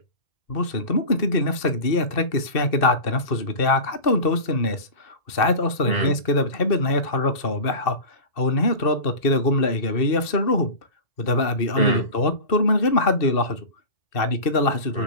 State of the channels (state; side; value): late; right; 2.6 ms